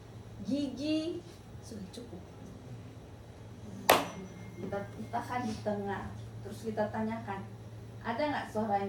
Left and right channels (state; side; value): identical; both; correlation 1.00